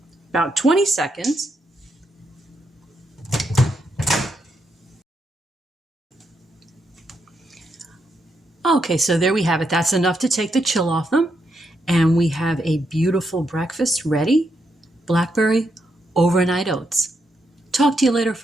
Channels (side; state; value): both; normal; correlation 0.80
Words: About 20 seconds. Okay, so there we have it. That's enough to take the chill off them. And we have a beautiful breakfast ready. Blackberry Overnight Oats. Talk to you later,